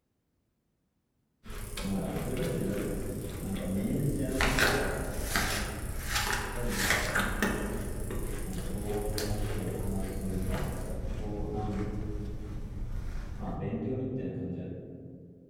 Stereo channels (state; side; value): identical; both; correlation 1.00